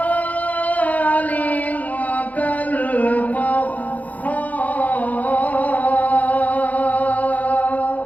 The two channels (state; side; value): late; right; 0.076 ms